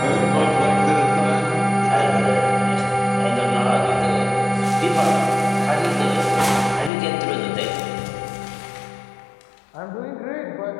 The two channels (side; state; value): right; drops out; at 6.9 s